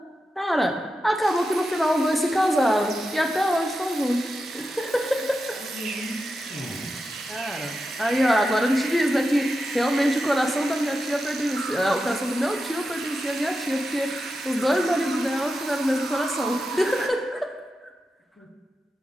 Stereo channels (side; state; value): both; normal; correlation 0.89